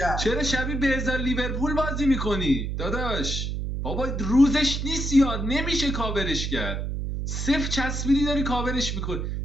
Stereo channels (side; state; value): right; noise; hum, 2 dB below the sound